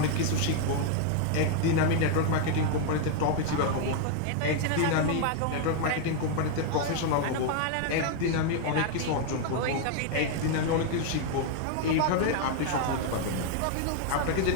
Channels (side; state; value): both; different; correlation 0.01